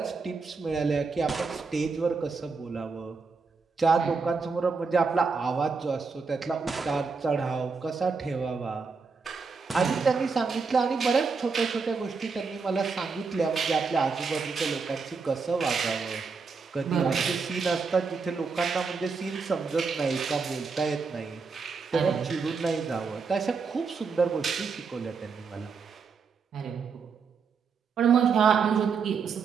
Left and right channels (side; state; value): left; quieter; 5.0 dB